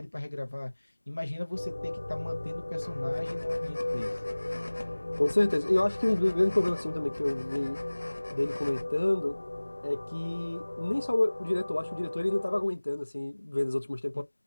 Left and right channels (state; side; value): inverted; both; correlation -1.00